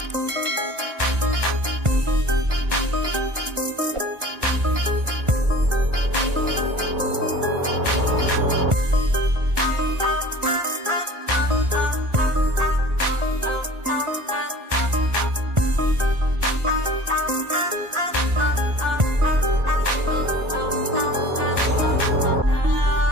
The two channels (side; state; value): left; late; 1.5 ms